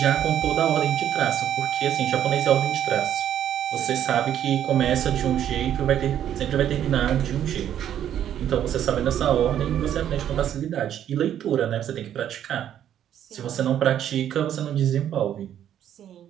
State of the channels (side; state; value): left; quieter; 10.4 dB